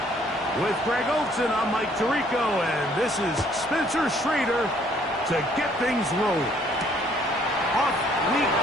With Greg Olson, I'm Mike Tirico, and this is Spencer Schrader to get things rolling. Off we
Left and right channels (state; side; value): normal; both; correlation 0.63